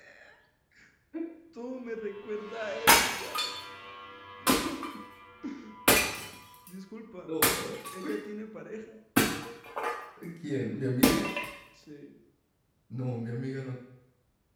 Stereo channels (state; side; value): identical; both; correlation 1.00